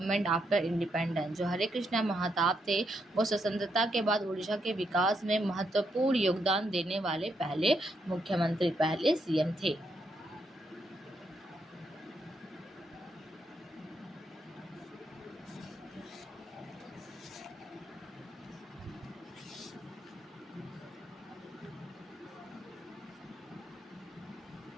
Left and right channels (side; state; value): both; normal; correlation 0.78